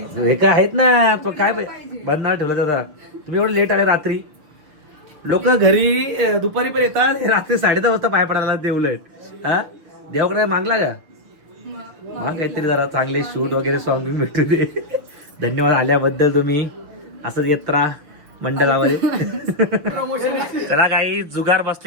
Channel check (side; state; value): left; late; 6.4 ms